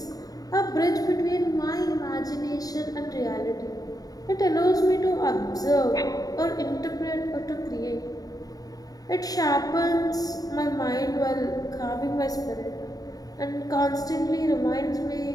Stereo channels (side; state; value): right; late; 0.18 ms